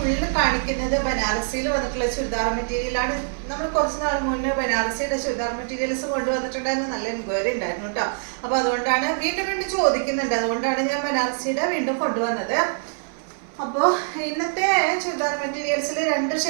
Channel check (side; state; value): left; silent; digital silence